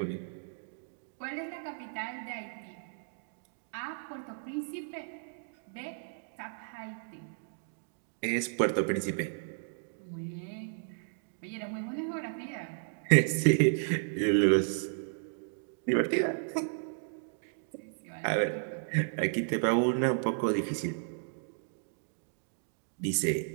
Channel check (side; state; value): left; silent; digital silence